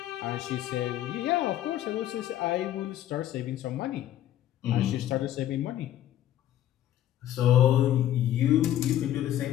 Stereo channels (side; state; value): right; quieter; 12.3 dB